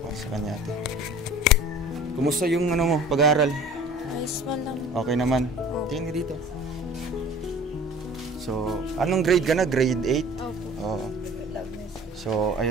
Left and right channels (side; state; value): both; normal; correlation 0.44